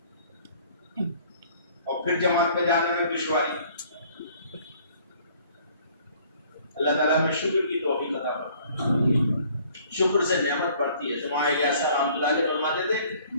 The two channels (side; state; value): both; inverted; correlation -0.57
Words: اور پھر جماعت میں جانے میں دشواری. اللہ تعالیٰ میں شکر کی توفیق عطا فرمائے. شکر سے نعمت بڑھتی ہے. جماعت الیاس رحمۃ اللہ علیہ فرماتے تھے